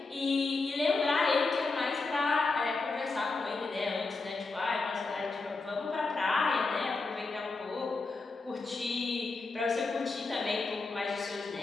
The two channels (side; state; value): right; quieter; 3.8 dB